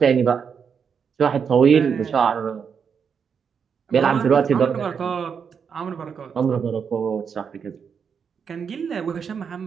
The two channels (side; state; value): left; quieter; 6.7 dB